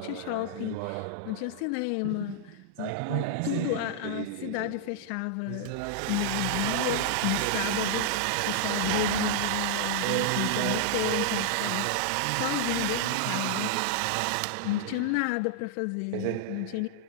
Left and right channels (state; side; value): different; both; correlation -0.01